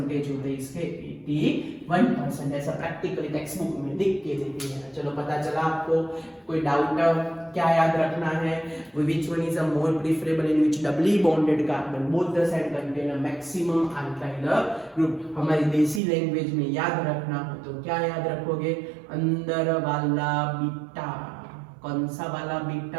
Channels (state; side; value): drops out; left; at 16.0 s